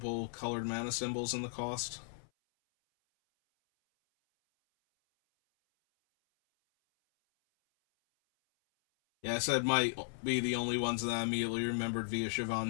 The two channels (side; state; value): right; silent; 54 dB below the other